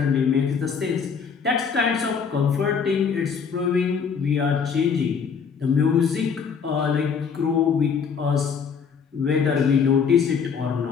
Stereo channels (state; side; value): quieter; right; 6.3 dB